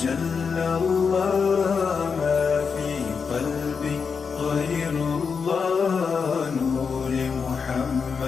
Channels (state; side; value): quieter; right; 5.7 dB